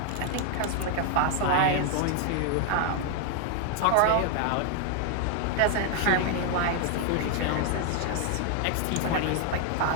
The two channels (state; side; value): different; both; correlation 0.00